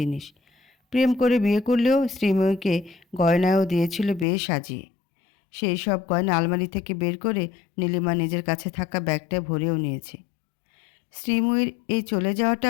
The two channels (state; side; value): drops out; right; at 4.2 s